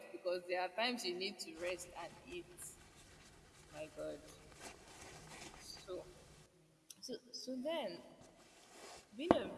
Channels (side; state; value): both; identical; correlation 1.00